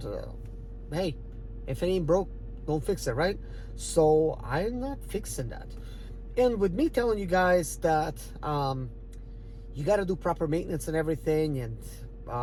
hey, if it ain't broke, don't fix it, right? So I'm not fixing that. And with me telling you guys that you got to do proper maintenance and everything, and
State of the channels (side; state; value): both; identical; correlation 1.00